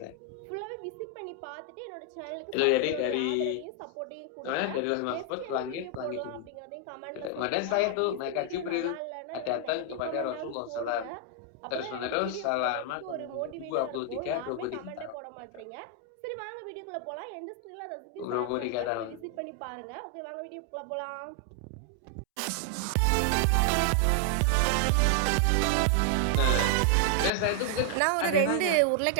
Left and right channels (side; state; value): both; different; correlation 0.00